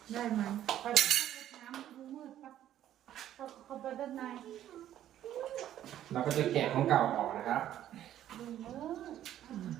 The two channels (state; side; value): quieter; left; 11.8 dB